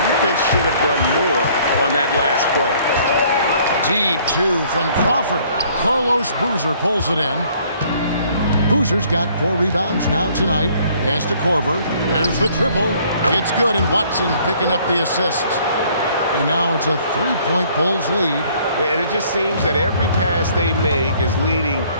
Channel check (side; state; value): both; inverted; correlation -0.60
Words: should have done more on that last play. Deep 2 from Crawford. Carlos Boozer pulls it in. Boozer's got 4 rebounds now tonight. Pass to Corver. There's the triple. It's good, and Watson picking up the assist. And now it's a 3-point Bulls lead. And it just seems that every pass they make is leading